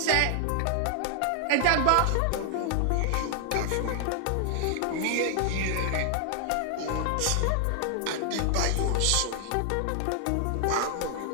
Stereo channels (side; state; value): both; different; correlation 0.00